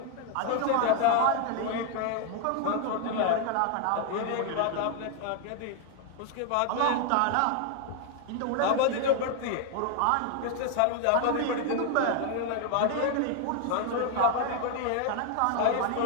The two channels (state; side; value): different; both; correlation 0.00